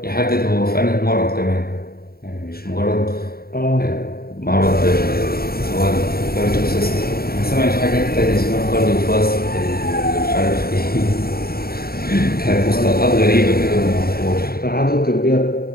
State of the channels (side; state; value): right; late; 0.44 ms